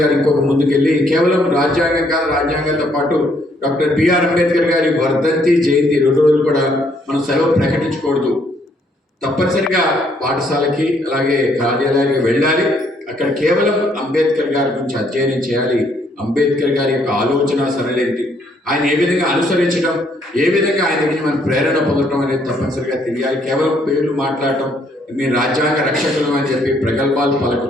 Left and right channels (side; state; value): both; normal; correlation 0.69